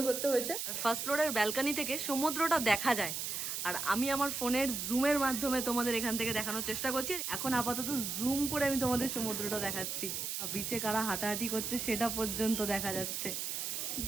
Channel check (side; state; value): right; noise; hiss, 3 dB below the sound